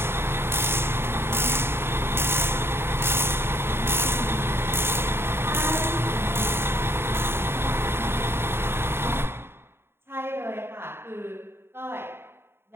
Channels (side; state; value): left; late; 0.11 ms